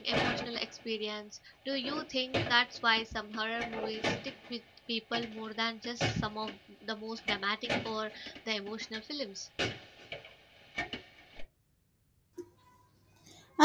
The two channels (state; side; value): identical; both; correlation 1.00